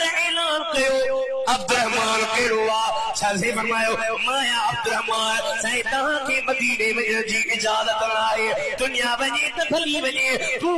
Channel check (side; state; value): both; identical; correlation 1.00